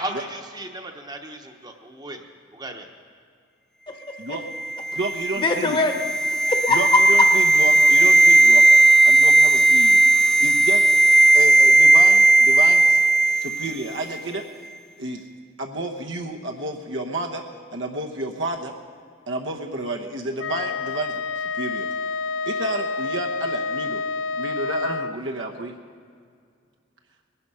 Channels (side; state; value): both; normal; correlation 0.85